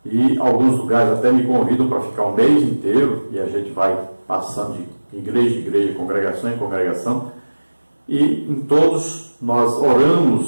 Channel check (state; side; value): inverted; both; correlation -1.00